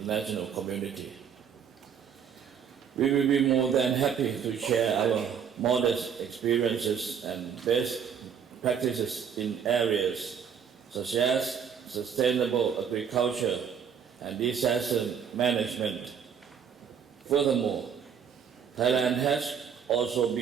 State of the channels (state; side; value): quieter; left; 7.5 dB